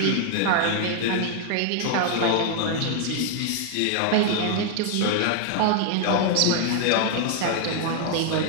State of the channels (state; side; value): different; both; correlation 0.00